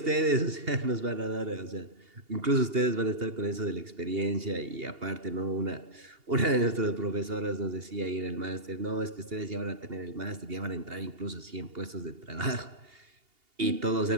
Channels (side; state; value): left; late; 2.8 ms